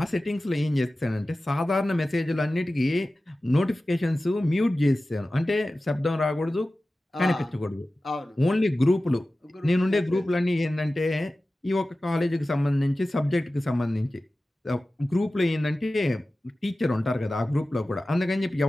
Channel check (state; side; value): normal; both; correlation 0.95